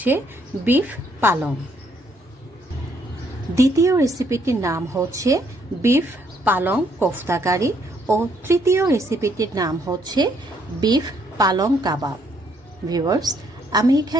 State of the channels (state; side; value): normal; both; correlation 0.69